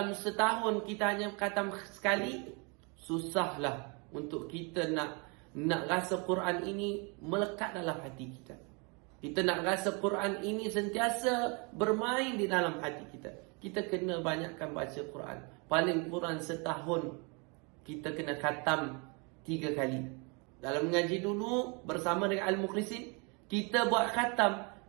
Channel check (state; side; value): quieter; left; 32.2 dB